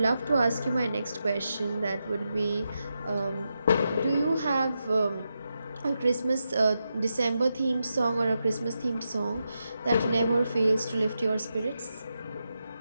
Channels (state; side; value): inverted; both; correlation -0.87